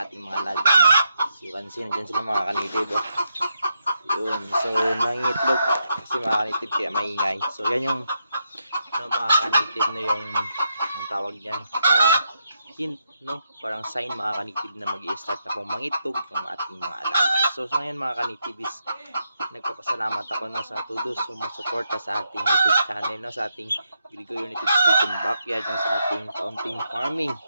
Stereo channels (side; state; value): both; inverted; correlation -0.81